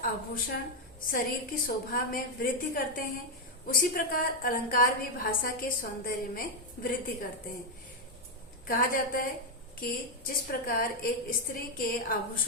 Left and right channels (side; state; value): both; normal; correlation 0.01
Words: आभूषण शरीर की शोभा में वृद्धि करते हैं, उसी प्रकार अलंकार भी भाषा के सौंदर्य में वृद्धि करते हैं। कहा जाता है कि जिस प्रकार एक स्त्री के